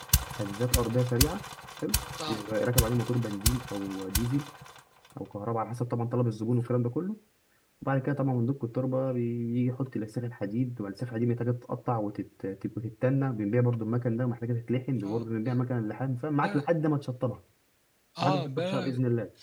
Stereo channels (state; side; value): identical; both; correlation 1.00